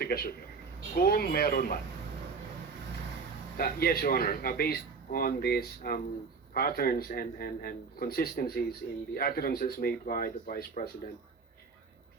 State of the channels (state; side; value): quieter; left; 5.0 dB